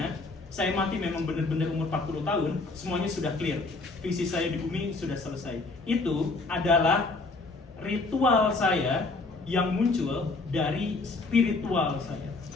saya mati memang benar-benar umur 40 tahun, semuanya sudah clear. Visi saya di bumi sudah selesai. Itu adalah ritual saya yang muncul dari spiritual saya.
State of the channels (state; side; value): quieter; right; 3.5 dB